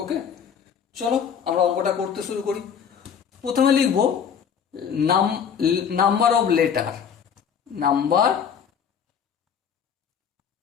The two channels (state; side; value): quieter; right; 7.5 dB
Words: ওকে, চলো আমরা অঙ্কটা করতে শুরু করি। প্রথমে লিখব number of letter, number